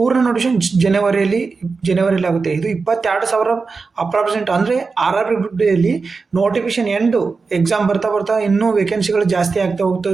ನೋಟಿಫಿಕೇಶನ್ ಜನವರಿಯಲ್ಲಿ ಆಗುತ್ತೆ. ಇದು 22,000 ಅಪ್ರಾಕ್ಸಿಮೇಟ್ ಅಂದರೆ RRB ಗ್ರೂಪ್ ಡಿಯಲ್ಲಿ ನೋಟಿಫಿಕೇಶನ್ ಎಕ್ಸಾಮ್ ಬರ್ತಾ ಇನ್ನೂ ವೇಕೆನ್ಸಿಗಳು ಜಾಸ್ತಿ ಆಗ್ತಾ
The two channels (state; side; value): quieter; left; 4.5 dB